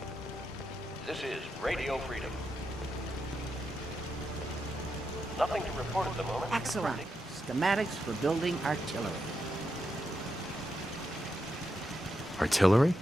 This is Radio Freedom. Nothing to report at the moment. Excellent. Schematics for building artillery. Artillery?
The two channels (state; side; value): normal; both; correlation 0.85